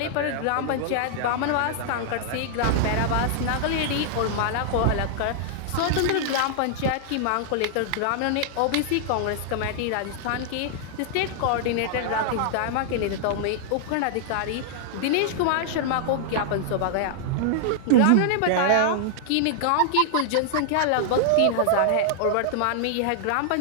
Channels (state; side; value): different; both; correlation -0.01